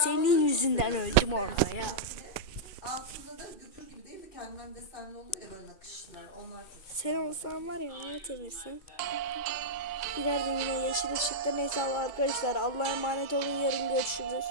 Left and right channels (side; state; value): right; late; 2.3 ms